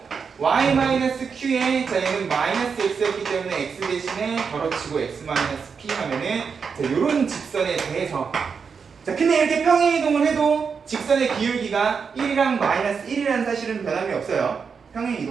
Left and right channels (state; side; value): quieter; left; 5.9 dB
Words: Y-Q에 자 얘는 마이너스 X였기 때문에 X 대신에 덜어치고 X-P 하면은 자, 요런 직선에 대해서 자, 근데 이렇게 평행이동을 해도 직선의 기울기가 1이랑 마이너스 1이라는 사실은 변함이 없어요.